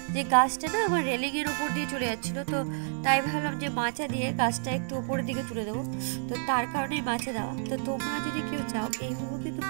যে গাছটা না আমার রেলিংয়ের ওপর দিয়ে চলে যাচ্ছিলো, তো তাই ভাবলাম যে মাচা দিয়ে গাছটা একটু ওপরের দিকে তুলে দেবো, তো তার কারণেই মাচা দেওয়া। তো তোমরা যদি কেউ চাও এইভাবে কিন্তু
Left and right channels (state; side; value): silent; left; digital silence